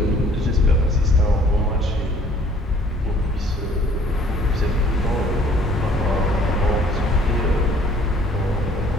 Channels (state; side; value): normal; both; correlation 0.57